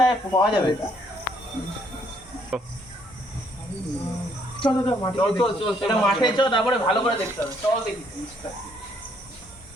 পাওয়া যাবে? এটা চল মাঠে চল এটা মাঠে চল, তারপরে ভালো করে দেখতে হবে। চল দেখি জিনিসটা।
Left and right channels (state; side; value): normal; both; correlation 0.68